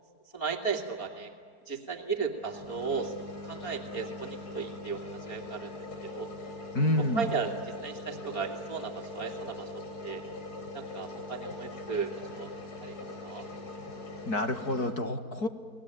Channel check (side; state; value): right; late; 4.3 ms